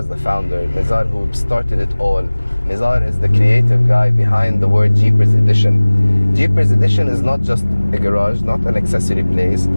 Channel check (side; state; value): both; inverted; correlation -1.00